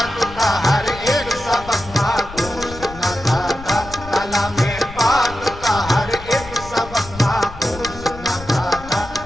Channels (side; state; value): left; noise; rumble, 15 dB below the sound